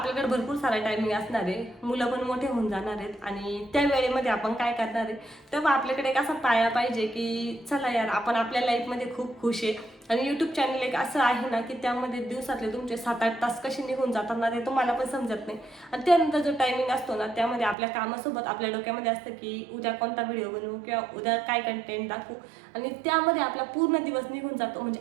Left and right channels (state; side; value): drops out; left; at 17.8 s